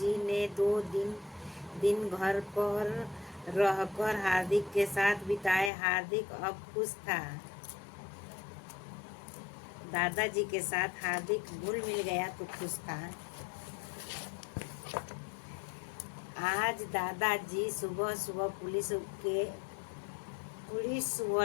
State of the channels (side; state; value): right; drops out; at 5.7 s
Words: ने 2 दिन घर पर रहकर हार्दिक के साथ बिताए। हार्दिक अब खुश था। दादाजी के साथ हार्दिक घुल मिल गया तो खुश था। आज दादाजी सुबह सुबह पुलिस